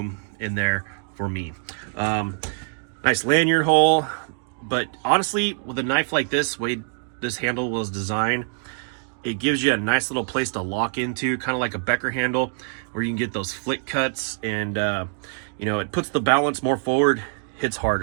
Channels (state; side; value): silent; left; 55 dB below the other